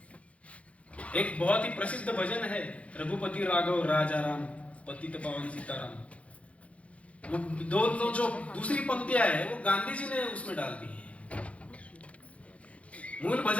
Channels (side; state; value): right; late; 0.064 ms